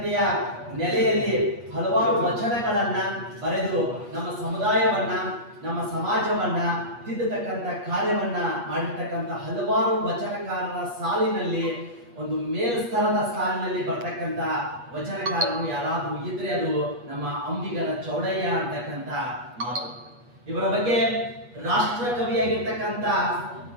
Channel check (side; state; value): left; late; 8.4 ms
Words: ನೆಲೆಯಲ್ಲಿ ಹಲವಾರು ವಚನಗಳನ್ನ ಬರೆದು ನಮ್ಮ ಸಮುದಾಯವನ್ನ, ನಮ್ಮ ಸಮಾಜವನ್ನ ತಿದ್ದತಕ್ಕಂಥ ಕಾರ್ಯವನ್ನ ಮಾಡಿರ್ತಕ್ಕಂಥ ಹಲವಾರು ವಚನಕಾರರ ಸಾಲಿನಲ್ಲಿ ಒಂದು ಮೇಲ್ಸ್ತರದ ಸಾಲಿನಲ್ಲಿ ಬರ್ತಕ್ಕಂಥ ವಚನಕಾರರು ಯಾರಾದ್ರೂ ಇದ್ರೆ ಅದು ನಮ್ಮ ಅಂಬಿಗರ ಚೌಡಯ್ಯ ಅಂತಕ್ಕಂಥ ಮಾತು. ಇವರ ಬಗ್ಗೆ ರಾಷ್ಟ್ರಕವಿಯಾಗಿರ್ತಕ್ಕಂಥ